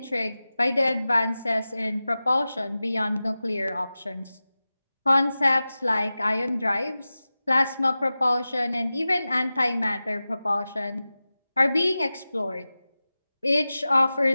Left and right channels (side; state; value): both; inverted; correlation -0.96